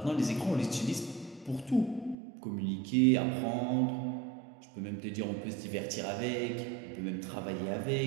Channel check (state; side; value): drops out; left; at 2.1 s